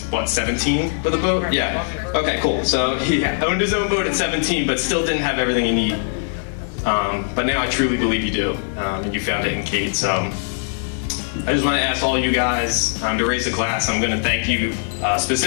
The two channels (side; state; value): right; silent; digital silence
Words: what, 17 with a boat? Yeah. Okay, cool. So he owned his own boat at 17, but still didn't have everything he needed. But now I truly believe you do, and you found it in Kate. So I just want to ask all you guys to raise a glass. I'm going to thank you,